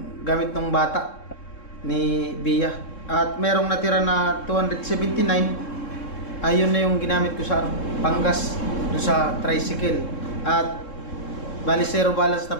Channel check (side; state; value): right; late; 3.7 ms